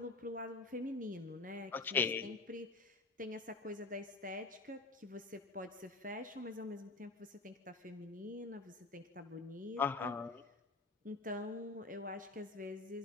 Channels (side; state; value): right; quieter; 3.6 dB